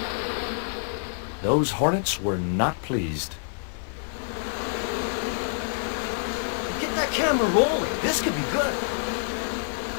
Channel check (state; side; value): silent; right; 60 dB below the other